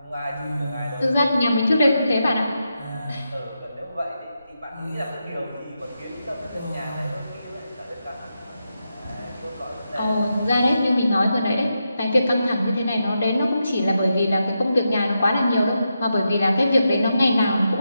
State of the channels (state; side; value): inverted; both; correlation -0.86